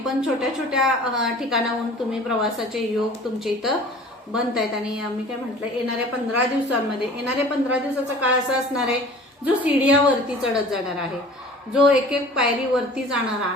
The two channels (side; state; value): both; normal; correlation 0.45